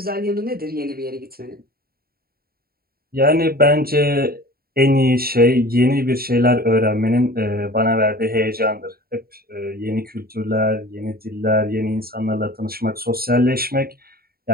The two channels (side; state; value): left; late; 0.44 ms